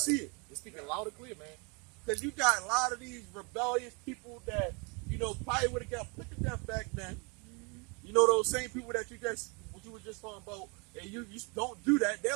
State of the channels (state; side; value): quieter; left; 31.6 dB